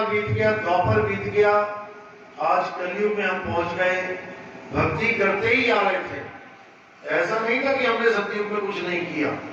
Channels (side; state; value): both; identical; correlation 1.00